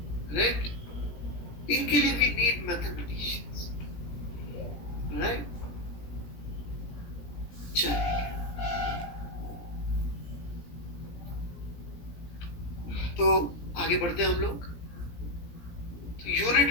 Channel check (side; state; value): right; late; 17 ms